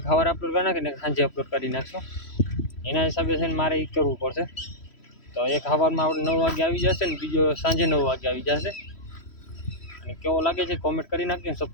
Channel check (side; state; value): right; late; 3.1 ms